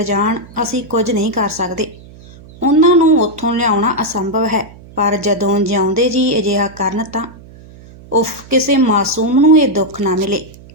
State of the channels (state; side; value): noise; right; hum, 21 dB below the sound